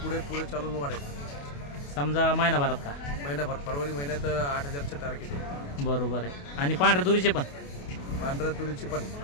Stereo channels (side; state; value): right; late; 28 ms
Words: पुढे चालून वाढेल. समजा महिनाभरात का? महिनाभर, फरवरी महिन्यात 8000चे टार्गेट आहे. बरोबर आहे. आणि पांढऱ्या तुरीचे पण? पांढऱ्या तुरीची पण